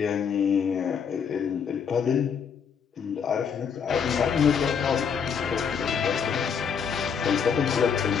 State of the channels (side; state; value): right; quieter; 6.8 dB